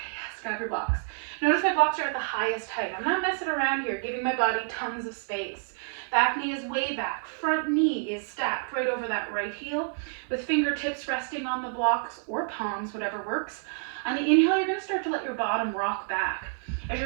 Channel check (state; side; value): silent; left; 59 dB below the other